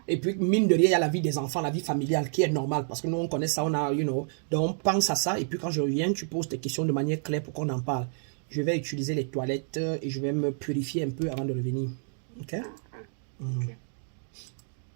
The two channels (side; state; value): left; silent; 59 dB below the other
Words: Et puis, mine de rien, il y a la vie des enfants, la vie familiale qui est normale. Parce que nous, on connaît ça, on a, donc pense à ça. Et puis, quand je reviens, tu poses tes questions de manière claire pour qu'on en parle. Je vais utiliser les toilettes et je vais me purifier un peu avant de revenir. Ok? Ok.